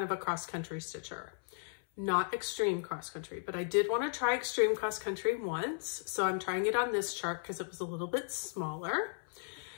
of a cross-country stitcher. Not extreme cross-country, but I did want to try extreme cross-country once. So I'm trying it on this chart because it was a little bit smaller.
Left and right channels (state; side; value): silent; right; 54 dB below the other